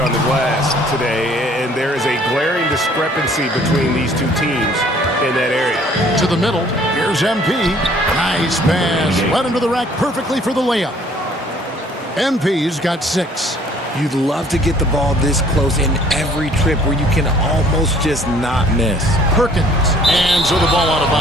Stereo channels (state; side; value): normal; both; correlation 0.57